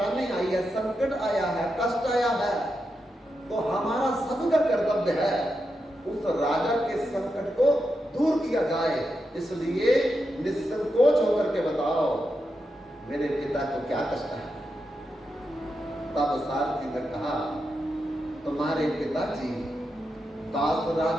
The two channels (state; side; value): normal; both; correlation 0.86